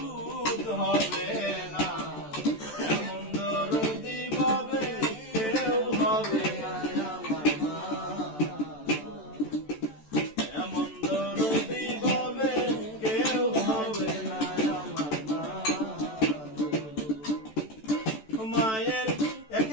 হবে না, এমন দরদি ভাবে কেউ হবে না আমার মা, এমন দরদি ভাবে কেউ হবে না আমার মা। মায়ের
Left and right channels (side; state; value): right; late; 14 ms